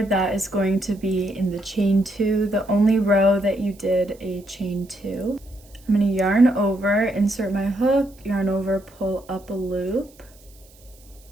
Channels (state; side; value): noise; right; hiss, 27 dB below the sound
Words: that is going to be in the chain 2, the only row that you did a chain 2. I'm going to yarn over, insert my hook, yarn over, pull up a loop.